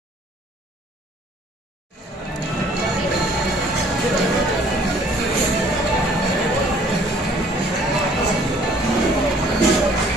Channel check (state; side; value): normal; both; correlation 0.57